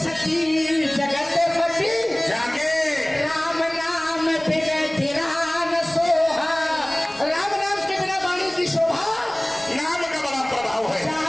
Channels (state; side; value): noise; right; rumble, 26 dB below the sound